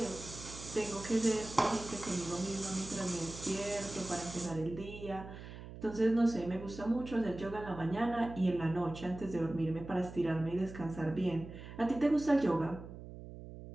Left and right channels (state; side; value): noise; right; hum, 13 dB below the sound